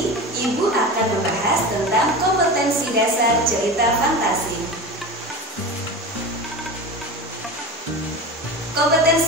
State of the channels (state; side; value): normal; both; correlation 0.28